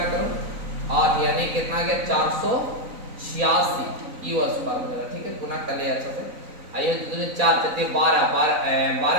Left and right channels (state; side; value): late; left; 3.9 ms